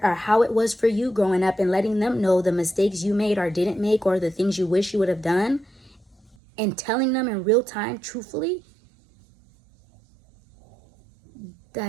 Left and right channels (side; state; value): left; drops out; at 6.4 s